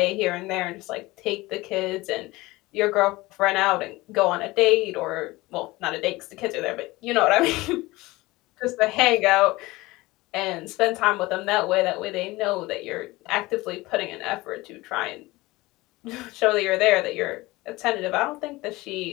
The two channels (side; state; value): right; quieter; 20.5 dB